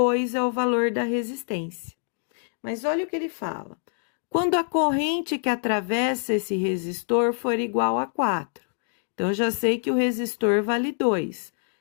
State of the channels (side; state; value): right; silent; 58 dB below the other